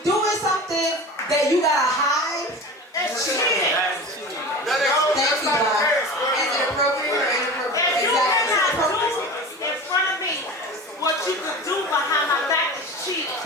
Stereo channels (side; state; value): both; normal; correlation 0.33